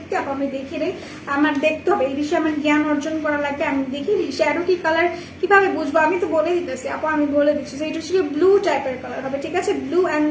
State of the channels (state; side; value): identical; both; correlation 1.00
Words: আপু আমি দেখি নেই, আমার দেখতে হবে এই বিষয়ে, আমার জ্ঞান অর্জন করা লাগবে। আমি দেখি শ্যাডো কি কালার কিভাবে বুঝবো, আমি তো বলে দিতেছি আপু, আমি বলে দিচ্ছি। এটা হচ্ছে গিয়ে ব্লু টাইপের কালার হবে, ঠিক আছে ব্লু। অ্যান্ড